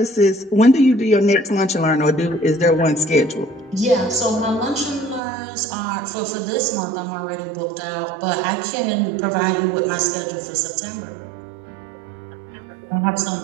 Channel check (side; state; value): left; drops out; at 5.2 s